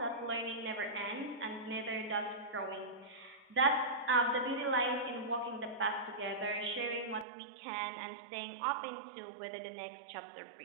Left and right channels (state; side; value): drops out; left; at 7.2 s